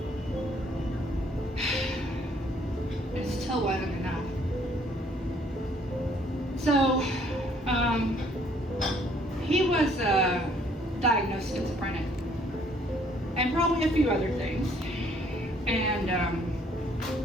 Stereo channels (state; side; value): normal; both; correlation 0.63